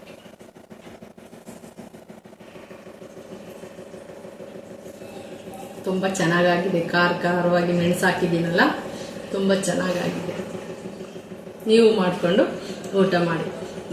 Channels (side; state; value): both; identical; correlation 1.00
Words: ತುಂಬ ಚೆನ್ನಾಗಾಗಿದೆ. ಖಾರವಾಗಿ ಮೆಣಸು ಹಾಕಿದ್ದೀನಲ್ಲ, ತುಂಬ ಚೆನ್ನಾಗಾಗಿದೆ. ನೀವು ಮಾಡಿಕೊಂಡು ಊಟ ಮಾಡಿ.